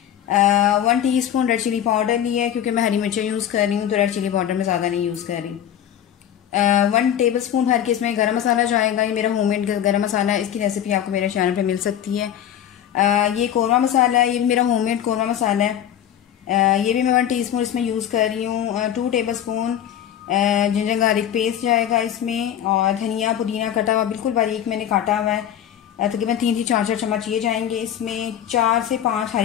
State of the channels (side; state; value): right; quieter; 10.3 dB